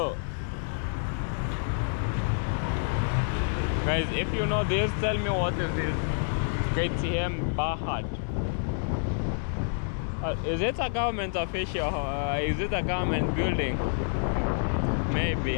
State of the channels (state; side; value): silent; right; 59 dB below the other